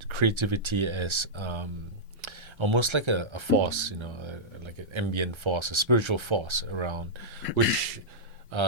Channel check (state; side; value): late; left; 1.3 ms